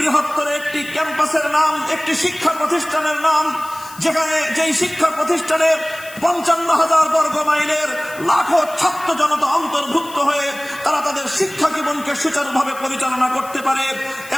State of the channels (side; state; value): left; noise; hiss, 18 dB below the sound